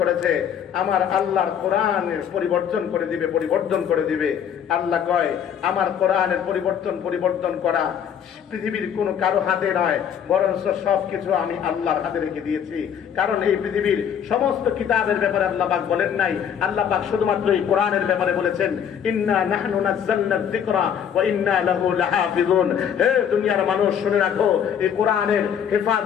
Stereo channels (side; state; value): right; quieter; 8.5 dB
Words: আমার আল্লাহর কোরআনের পরিবর্তন করে দিবে, আল্লাহ কয় আমার কোরআনের পরিবর্তন করা পৃথিবীর কোনো কারো হাতে নয়, বরঞ্চ সবকিছু আমি আল্লাহর হাতে রেখে দিয়েছি। কারণ এই পৃথিবীর সমস্ত কিতাবের ব্যাপারে আল্লাহ পাক বলেন নাই, আল্লাহ পাক শুধুমাত্র এই কোরআনের ব্যাপারে বলেছেন ইন্না নাহনু নাযালনা যিকরা ওয়া ইন্না লাহু লাহাফিজুন। হে দুনিয়ার মানুষ, শুনে রাখো, এই কোরআনের